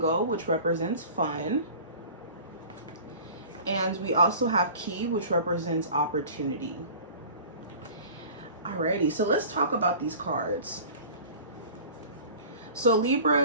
which represents fun. And we also have key, which represents opportunity. Alrighty, so let's talk about these cards. So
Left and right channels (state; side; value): inverted; both; correlation -0.42